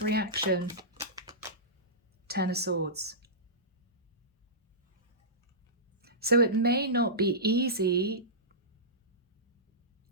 reaction? Ten of Swords. So it may not be easy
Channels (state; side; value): normal; both; correlation -0.18